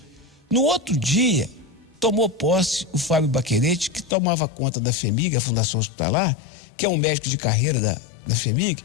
No outro dia, tomou posse o Fábio Baquerete, que tomava conta da FHEMIG, a Fundação Hospitalar, que é um médico de carreira da FHEMIG,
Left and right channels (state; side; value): drops out; right; at 4.1 s